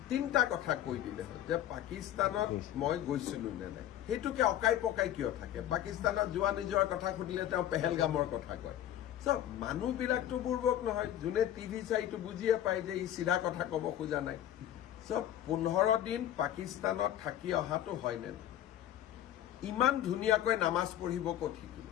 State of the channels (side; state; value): right; quieter; 11.7 dB